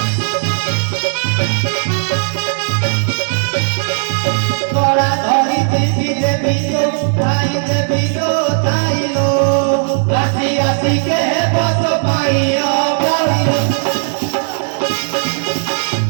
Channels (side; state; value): left; silent; 61 dB below the other